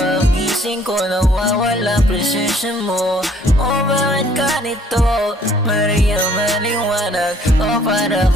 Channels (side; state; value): both; normal; correlation 0.61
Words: ko, nawawala presensya mo. O bakit ganito? Maria, maliwanag. O para